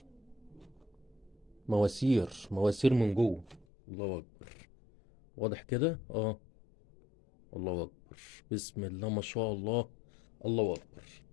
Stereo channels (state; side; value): drops out; right; at 3.7 s